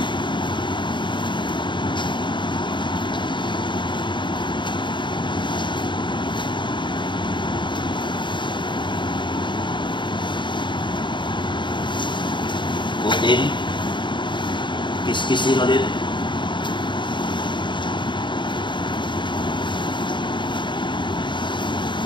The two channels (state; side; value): late; right; 0.23 ms